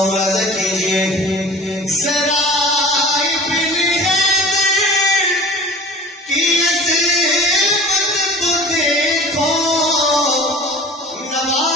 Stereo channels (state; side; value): normal; both; correlation 0.41